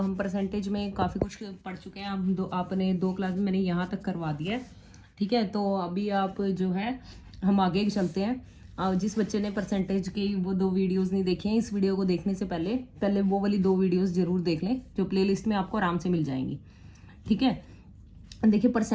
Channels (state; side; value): identical; both; correlation 1.00